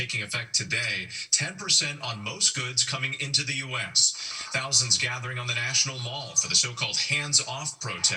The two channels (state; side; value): identical; both; correlation 1.00